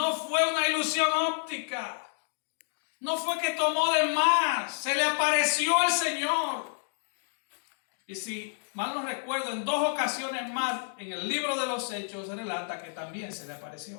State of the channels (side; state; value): right; silent; digital silence